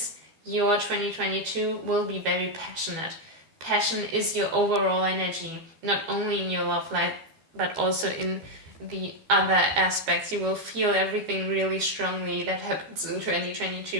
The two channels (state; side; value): late; left; 12 ms